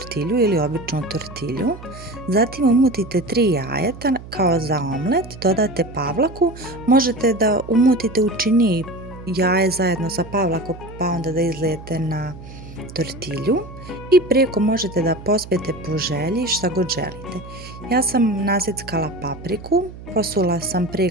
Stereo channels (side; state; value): right; noise; hum, 15 dB below the sound